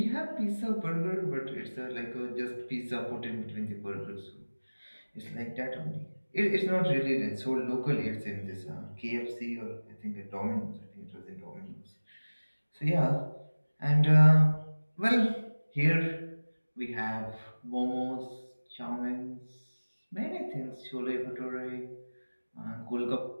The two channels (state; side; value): inverted; both; correlation -1.00